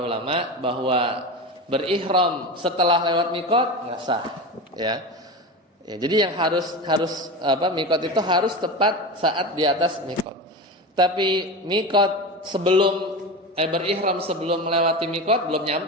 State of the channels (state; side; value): normal; both; correlation 0.25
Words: ulama bahwa berihram setelah lewat mikot nggak sah ya. Ya, jadi yang harus mikot itu harus tepat saat di atas mikot. Tapi mikot berihram sebelum melewati mikot belum